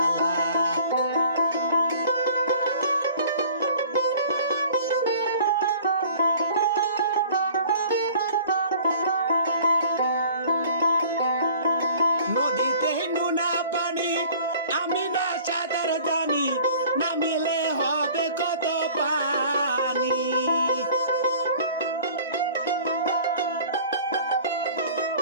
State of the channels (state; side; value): inverted; both; correlation -0.48